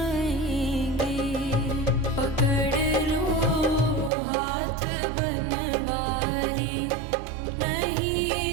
पकड़ लो हाथ बनवारी, नहीं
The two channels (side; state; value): left; drops out; at 4.1 s